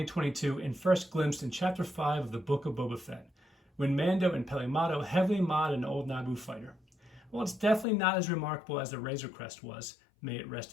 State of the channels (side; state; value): right; drops out; at 7.9 s